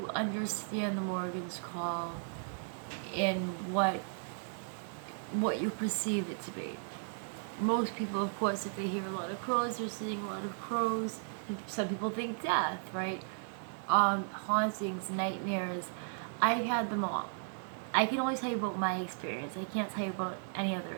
understand the Morgan's call and what you perceive it to be. Most people, of course, if they hear a lot of crows, they're seeing a lot of crows. Some people think death, right? Hauntings, nightmares. I've had them all. I can only tell you about my experience. I can't tell you about any other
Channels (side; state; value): left; silent; 54 dB below the other